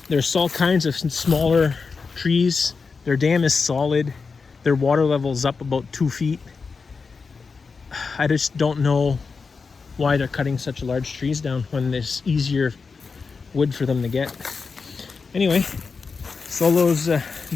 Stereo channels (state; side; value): quieter; right; 4.9 dB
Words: There's all kinds of smaller trees. Their dam is solid. Their water level is up about 2 feet. I just don't know why they're cutting such large trees down when there's easier wood for them to get. Anyway, Solo's